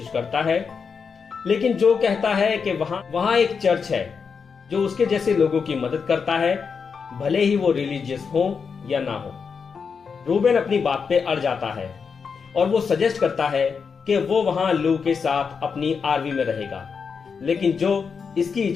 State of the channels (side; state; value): right; quieter; 5.8 dB